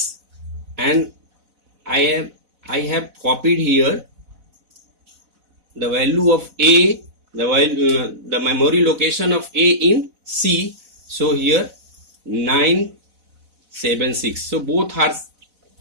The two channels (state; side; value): late; left; 4.0 ms